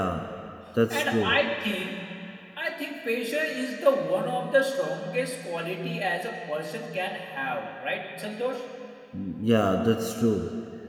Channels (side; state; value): both; identical; correlation 1.00